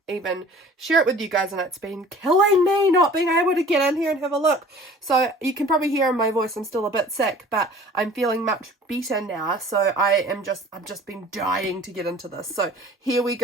even share it with you guys, and it's been killing me not being able to get in here and have a look. So you can probably hear in my voice I'm still a bit sick, but I'm feeling much better now. So I've just been dying to get into this. So here we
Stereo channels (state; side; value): normal; both; correlation 0.47